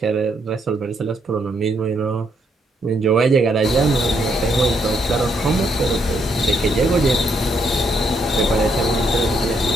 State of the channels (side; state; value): both; normal; correlation 0.74